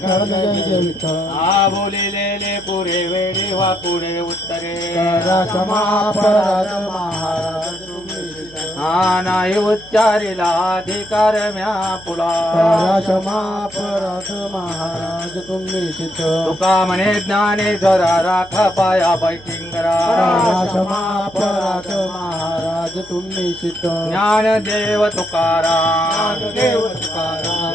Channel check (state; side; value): noise; right; hum, 23 dB below the sound